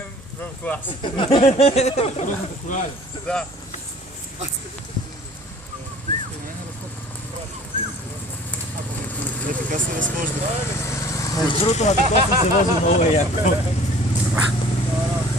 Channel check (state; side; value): normal; both; correlation 0.49